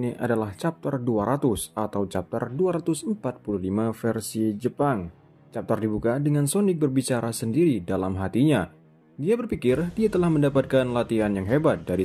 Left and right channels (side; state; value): both; identical; correlation 1.00